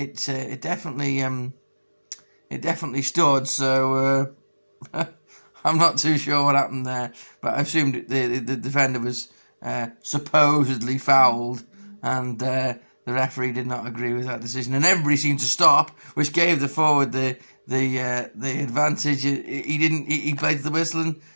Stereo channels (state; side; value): inverted; both; correlation -1.00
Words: definitely stood. So I'm not too sure what happened there, but I assumed the defender was supposedly fouled, and the referee did not agree with that decision, and everybody seemed to stop, which gave the forward the advantage. He played the whistle